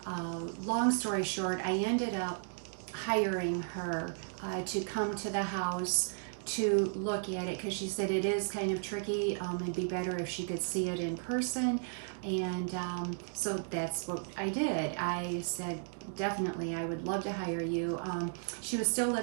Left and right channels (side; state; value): left; silent; digital silence